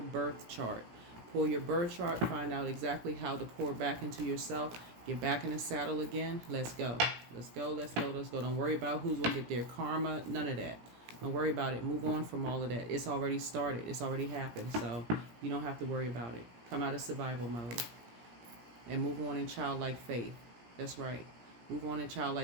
birth chart. Pull your birth chart. Find out exactly how to pour back into yourself. Get back in the saddle again. Let's go. Let's go. Let's go. Let's go. Don't worry about who's going to get their karma. None of that. Don't worry about it. Move on from all of that. It's already started. It's already happened. So you don't have to worry about it. Come out of survival mode and move on in childlike faith. That's right. Move on in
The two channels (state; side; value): late; left; 17 ms